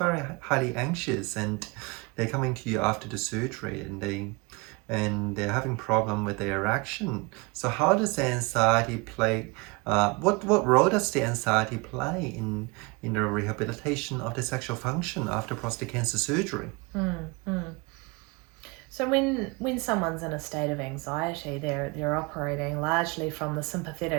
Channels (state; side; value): quieter; left; 27.6 dB